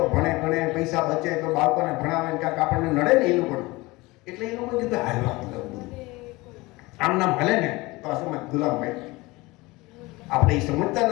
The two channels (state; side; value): quieter; right; 22.2 dB